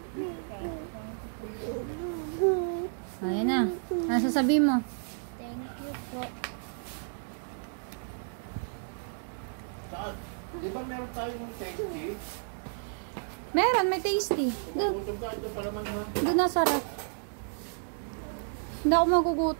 Ayan na. Ano sasabihin mo? Thank you po. Saan? Di ba meron tayong tasty? Meron, may tasty. Doon. Gutom ka, ito pa naman ha. Doon na sarap. Hindi ako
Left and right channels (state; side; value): silent; left; digital silence